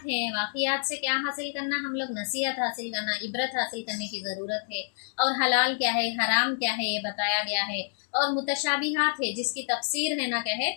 हैं, वाक़ियात से क्या हासिल करना, हम लोग नसीहत हासिल करना, इबरत हासिल करने की ज़रूरत है। और हलाल क्या है, हराम क्या है, ये बताया गया है। और मुतशाबिहात है, जिसकी तफसीर है ना क्या है,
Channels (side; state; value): right; silent; digital silence